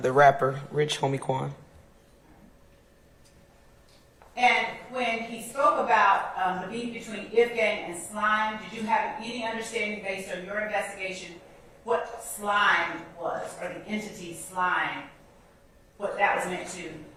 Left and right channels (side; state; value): both; identical; correlation 1.00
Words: The rapper, Rich Homie Quan. And when he spoke about the beef between If Gang and Slime, did you have any understanding based on your investigation what Slime was, or the entity Slime, what that was meant to